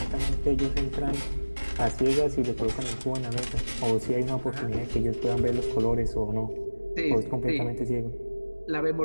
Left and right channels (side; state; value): both; inverted; correlation -1.00